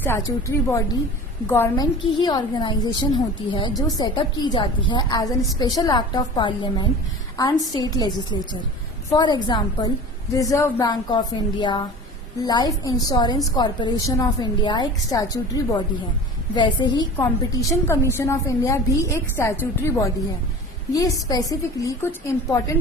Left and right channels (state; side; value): normal; both; correlation 0.38